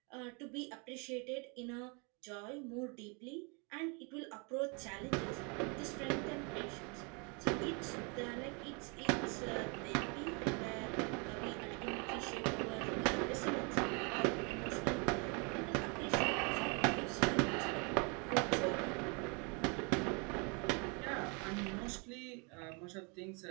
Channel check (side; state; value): left; quieter; 33.1 dB